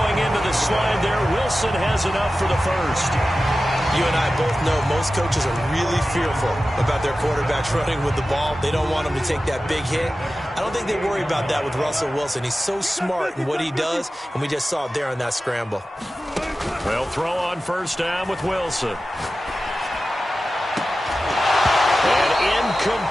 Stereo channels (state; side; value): normal; both; correlation 0.94